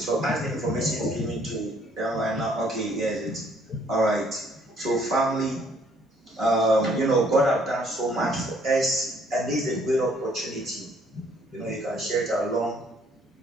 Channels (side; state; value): both; normal; correlation 0.63